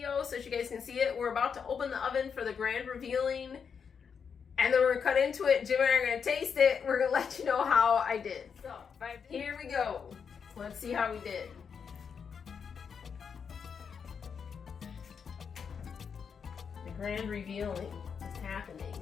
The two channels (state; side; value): quieter; right; 6.5 dB